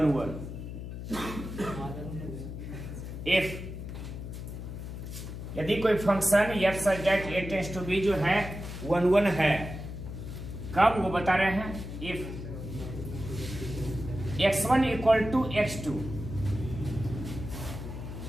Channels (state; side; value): noise; left; hum, 8 dB below the sound